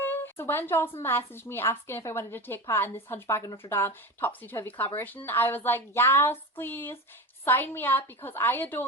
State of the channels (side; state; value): both; normal; correlation 0.26